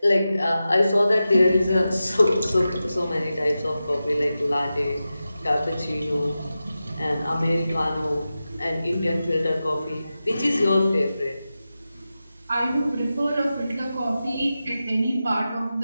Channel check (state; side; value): inverted; both; correlation -0.93